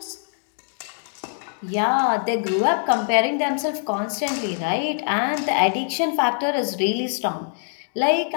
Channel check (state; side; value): silent; right; digital silence